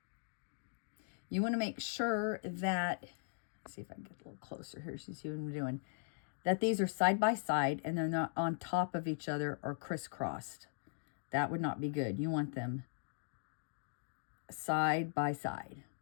You want to make sure that, let's see if I can get a little closer here so you see what I'm doing, that these are side by side and they're not on top of each other or crisscrossed. That would not be good. You want them side by side,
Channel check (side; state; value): right; silent; digital silence